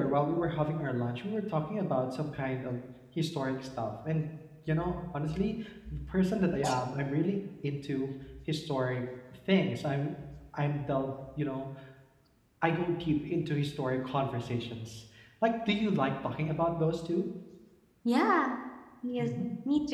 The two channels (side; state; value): both; identical; correlation 1.00